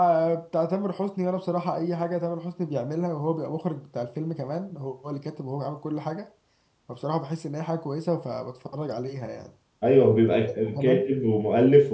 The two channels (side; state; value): both; identical; correlation 1.00